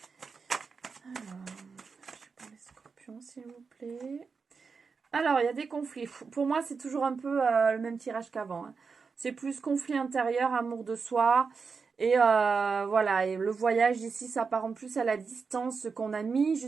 Alors, je prends les scorpions, s'il vous plaît. Alors, il y a des conflits. Pour moi, c'est toujours un peu le même tirage qu'avant. Hein. C'est plus conflit intérieur, amour de soi. Et voilà, et le voyage ici s'apparente plus à la distance qu'on a mis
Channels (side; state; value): left; quieter; 5.1 dB